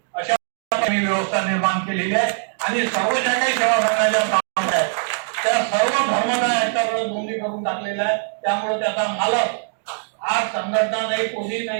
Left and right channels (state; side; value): silent; left; digital silence